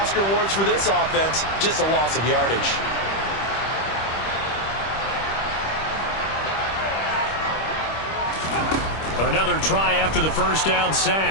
awards for this offense, just a loss of yardage. Another try after the first down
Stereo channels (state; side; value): late; right; 25 ms